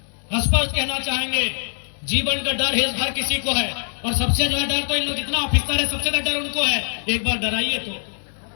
स्पष्ट कहना चाहेंगे, जीवन का डर हर किसी को है, और सबसे ज्यादा डर तो इन लोग जितना ऑफिसर है सबसे ज्यादा डर उनको है। एक बार डराइए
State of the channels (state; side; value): silent; right; digital silence